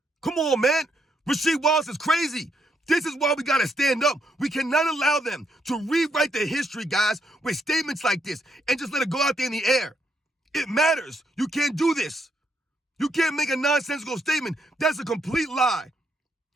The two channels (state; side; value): normal; both; correlation 0.76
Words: Come on, man. Rasheed Wallace is crazy. This is why we got to stand up. We cannot allow them to rewrite the history, guys, with statements like this and just let it go out there in the air. It matters. You can't do this. You can't make a nonsensical statement. That's a complete lie.